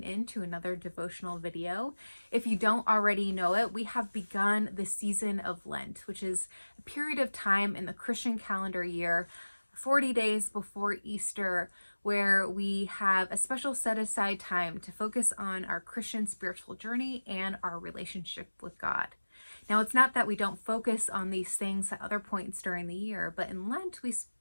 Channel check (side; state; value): both; inverted; correlation -1.00